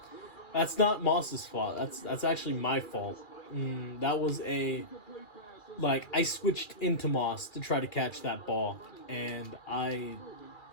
that's not Moss's fault. That's actually my fault. That was I switched into Moss to try to catch that ball, and I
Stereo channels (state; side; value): late; right; 2.4 ms